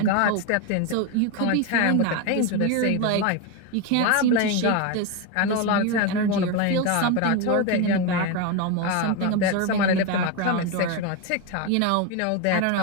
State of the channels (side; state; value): both; different; correlation 0.03